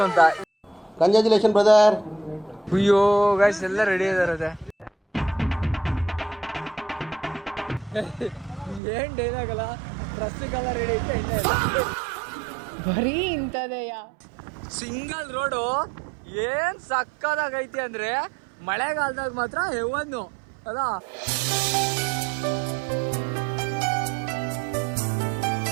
ಅಂತ. Congratulation brother. ಅಯ್ಯೋ ಗೈಸ್ ಎಲ್ಲ ರೆಡಿ ಇದಾರೆ. ಏನ್ ಡೈಲಾಗ್ ಅಲ್ಲ, ಪ್ರಸ್ತುತೆಲ್ಲ ರೆಡಿ ಐತೆ, ಎಣ್ಣೆ ಬರೀ ಇಂಥದೆಯಾ. ಸಿಂಗಲ್ ರೋಡು ಏನ್ ಸಕ್ಕದಾಗೈತಿ ಅಂದ್ರೆ ಮಳೆಗಾಲದಾಗ ಮಾತ್ರ ಹೆವನ್ನು ಅದ.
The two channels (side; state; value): left; drops out; at 8.8 s